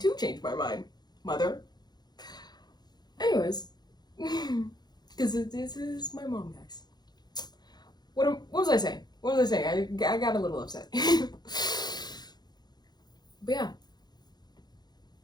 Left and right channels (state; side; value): late; right; 0.20 ms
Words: change my mind, mother. Anyways, because this is my mom, guys. What was I saying? What was I saying? I got a little upset. But yeah.